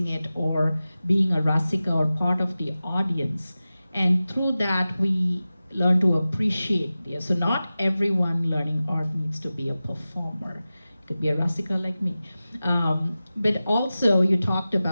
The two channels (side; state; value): both; inverted; correlation -0.95